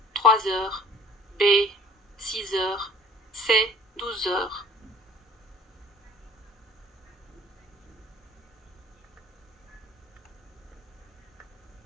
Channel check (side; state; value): both; normal; correlation 0.50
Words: 3 heures. B. 6 heures. C. 12 heures.